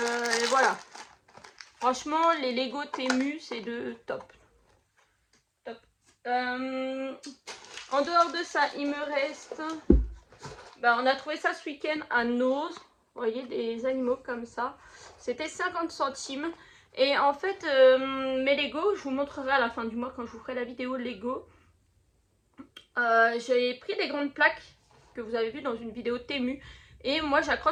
voilà. Franchement, les Lego Temu, c'est de top. Top. En dehors de ça, il me reste... on a trouvé ça ce week-end à Nose. Vous voyez, des animaux comme ça. C'était 50 centimes. Et en fait, mes Lego, je vous montrerai à la fin du mois quand je vous ferai la vidéo Lego. J'ai pris des grandes plaques que vous avez vues dans une vidéo Temu. Et moi,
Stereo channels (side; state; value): both; identical; correlation 1.00